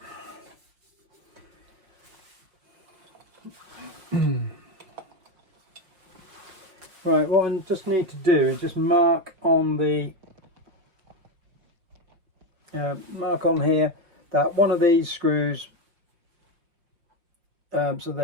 Right, what I just need to do is just mark on the mark on here that one of these screws, so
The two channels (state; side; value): late; left; 5.7 ms